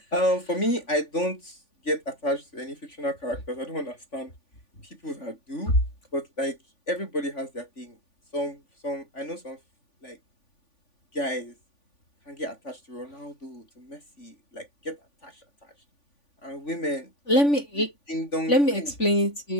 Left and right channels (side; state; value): right; late; 3.5 ms